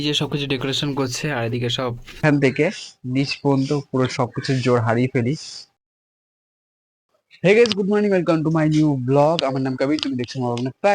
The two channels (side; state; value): both; identical; correlation 1.00